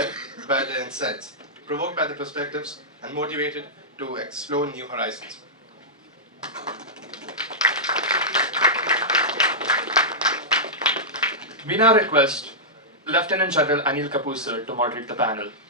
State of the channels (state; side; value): normal; both; correlation -0.12